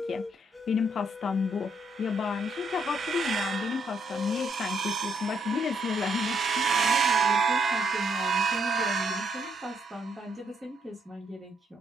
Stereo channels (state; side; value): normal; both; correlation 0.73